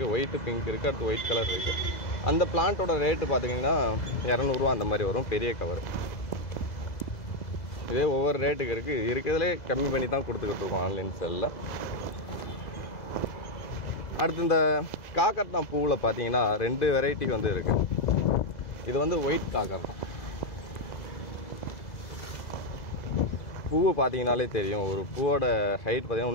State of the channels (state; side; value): late; right; 2.0 ms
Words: ஒயிட்டு பிங்க் இருக்குது, அடுத்து ஒயிட் கலர் இருக்குது. அந்த பிளான்ட்டோட ரேட்டு பார்த்தீங்கன்னா 200 ரூபா அந்த மாதிரி வரும், பெரிய கவர். இதே ஒவ்வொரு ரேட்டுக்கு இருக்குது, இருக்கிறதுலே கம்மி பண்ணி தான் கொடுத்துக்கிட்டு இருக்கோம் ஆன்லைன் செல்லில். அடுத்து இந்த காக்கர்தான் பூவில் பார்த்தீங்கன்னா 2 வெரைட்டி வந்து இருக்குது. இது வந்து ஒயிட் காக்கர்தான். பூவை பார்த்தீங்கனாலே தெரியும், ஒரு பூவோட ஹைட் பார்த்தீங்கன்னா